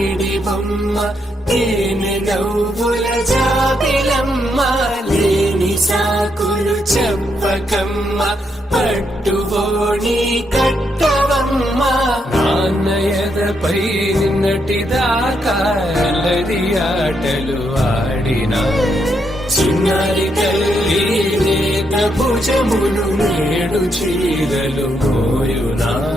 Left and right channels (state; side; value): normal; both; correlation 0.79